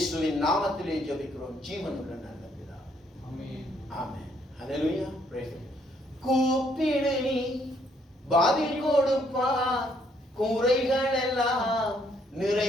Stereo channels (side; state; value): both; normal; correlation 0.69